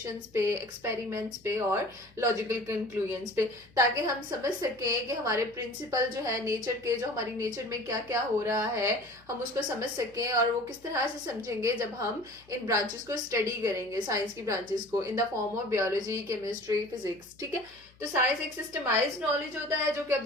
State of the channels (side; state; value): left; noise; hum, 28 dB below the sound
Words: पे, एक्सपेरिमेंट्स पे और लॉजिकल कंक्लूजन्स पे, ताकि हम समझ सकें कि हमारे प्रिंसिपल जो है नेचर के, जो हमारी नेचर में क्या क्या हो रहा है, हम उसको समझ सकें। और वो किस तरह से समझेंगे जब हम इन ब्रांचेस को स्टडी करेंगे, साइंस की ब्रांचेस को, in the form of biology, chemistry, physics. ठीक है, तो साइंस एक सिस्टमाइज्ड नॉलेज होता है जो कि